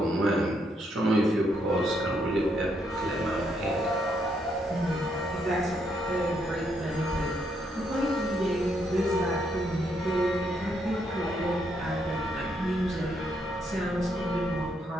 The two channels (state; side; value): normal; both; correlation 0.75